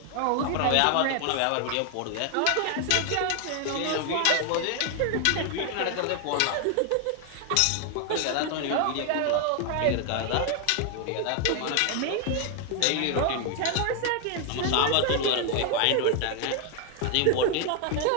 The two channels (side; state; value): both; different; correlation 0.00